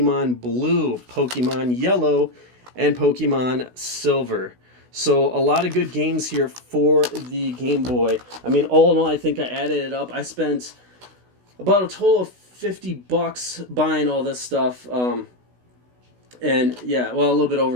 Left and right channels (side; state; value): left; late; 16 ms